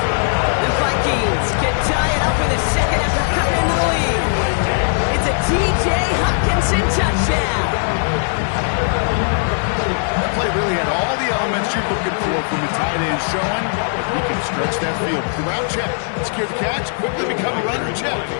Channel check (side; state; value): right; silent; digital silence